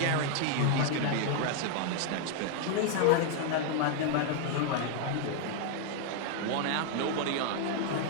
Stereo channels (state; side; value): different; both; correlation 0.00